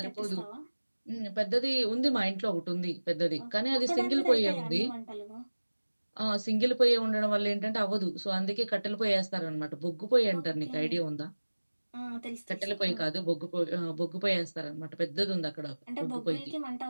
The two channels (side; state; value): both; inverted; correlation -1.00